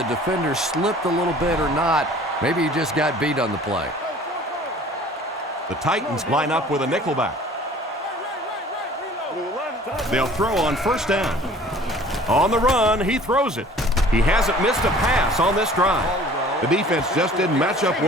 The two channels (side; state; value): both; normal; correlation 0.49